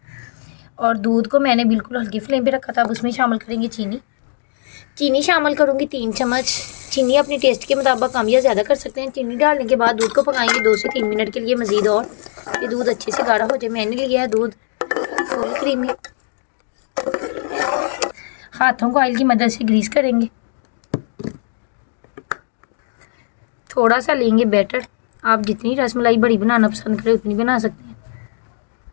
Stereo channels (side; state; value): right; silent; digital silence